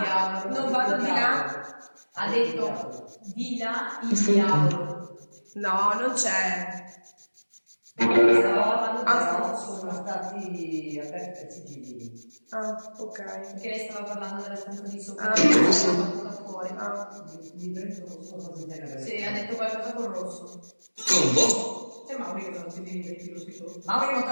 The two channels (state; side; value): inverted; both; correlation -1.00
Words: vado di là. Ha detto di là il diavolo. No, non c'è. Sono stati aperti i sigilli. Ah, ok. Perché lei stava parlando della stanza di sopra. Ah. Fuori. Mi prendo solo cose genere. Sì, ha detto qualcosa con rosso. Con voi. C'è Mauri che non si diventi lo scritto. Mauri non